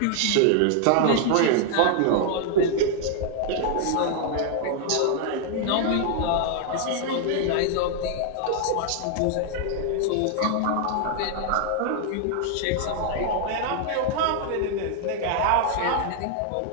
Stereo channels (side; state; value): both; different; correlation 0.00